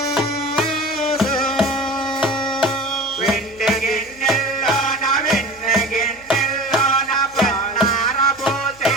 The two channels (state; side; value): noise; right; hum, 26 dB below the sound